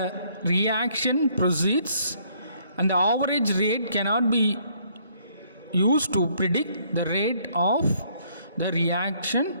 reaction proceeds, and the average rate cannot be used to predict the rate of the reaction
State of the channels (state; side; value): inverted; both; correlation -0.65